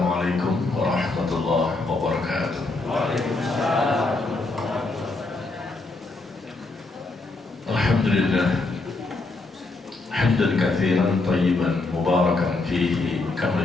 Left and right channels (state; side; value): quieter; right; 3.3 dB